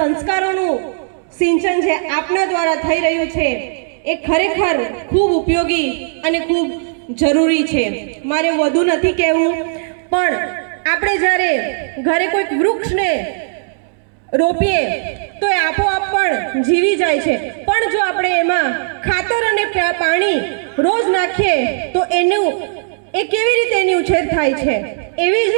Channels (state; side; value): silent; left; digital silence